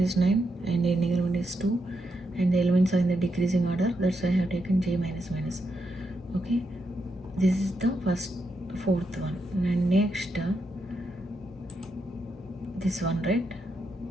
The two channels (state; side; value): normal; both; correlation 0.82